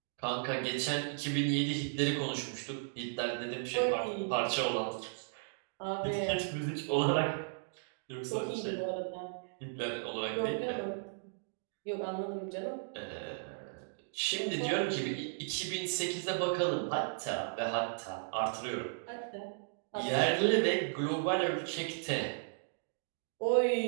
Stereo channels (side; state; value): left; silent; digital silence